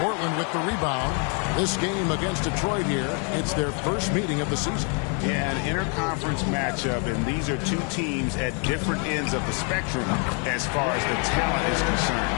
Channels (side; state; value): right; quieter; 38.3 dB